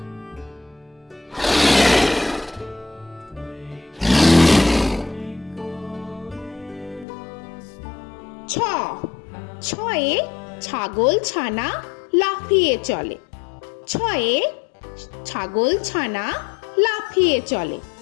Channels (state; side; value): drops out; right; at 7.1 s